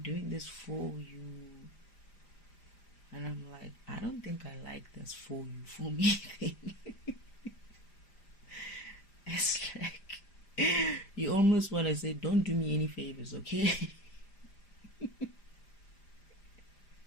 this for you. And I'm like, I don't think I like this for you, for me thing. It's like, you almost want to say, don't do me any favors, okay?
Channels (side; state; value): right; late; 5.0 ms